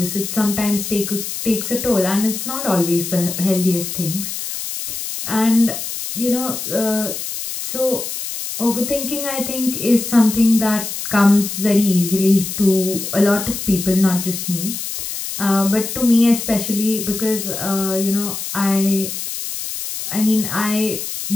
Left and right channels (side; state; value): left; noise; hiss, 6 dB below the sound